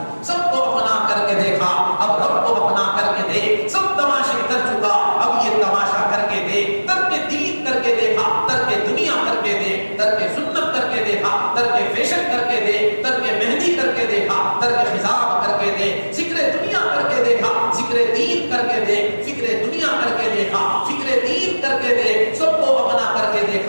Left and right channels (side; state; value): both; inverted; correlation -1.00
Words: سب کو اپنا کر کے دیکھا، اب رب کو اپنا کر کے دیکھ، سب تماشے کر چکا اب یہ تماشا کر کے دیکھ۔ ترک دین کر کے دیکھا، ترک دنیا کر کے دیکھ، ترک سنت کر کے دیکھا، ترک فیشن کر کے دیکھ، ترک مہندی کر کے دیکھا، ترک خضاب کر کے دیکھ، ذکر دنیا کر کے دیکھا، ذکر دین کر کے دیکھ، فکر دنیا کر کے دیکھا، فکر دین کر کے دیکھ، سب کو اپنا کر کے